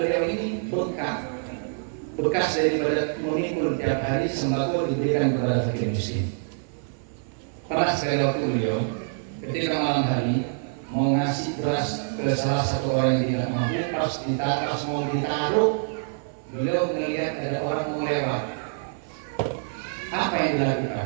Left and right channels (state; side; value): silent; left; 60 dB below the other